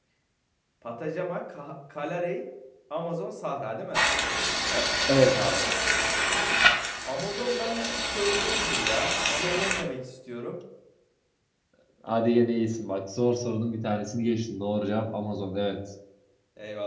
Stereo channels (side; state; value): both; identical; correlation 1.00